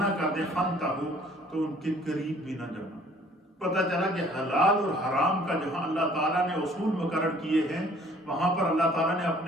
کر دے، فَانْتَهُوا، تو ان کے قریب بھی نہ جانا۔ پتہ چلا کہ حلال اور حرام کا جہاں اللہ تعالیٰ نے اصول مقرر کیے ہیں، وہاں پر اللہ تعالیٰ نے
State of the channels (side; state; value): both; normal; correlation 0.56